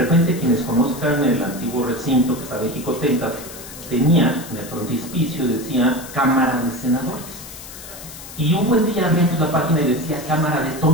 quienes conozcan el antiguo recinto que estaba en Jicotenta, tenía en el frontispicio, decía Cámara de Senadores. Y un buen día abrimos la página y decía Cámara de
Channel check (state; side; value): noise; left; hiss, 14 dB below the sound